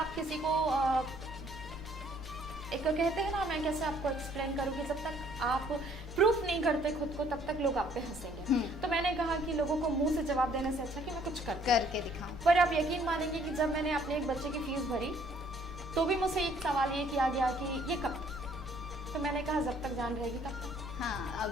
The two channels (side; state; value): both; normal; correlation 0.62